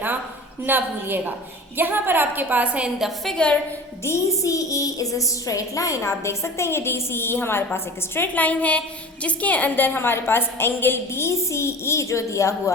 ना भूलिएगा। यहाँ पर आपके पास है in the figure DCE is a straight line. आप देख सकते हैं ये DCE हमारे पास एक स्ट्रेट लाइन है, जिसके अंदर हमारे पास एंगल DCE जो दिया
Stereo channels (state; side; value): normal; both; correlation 0.37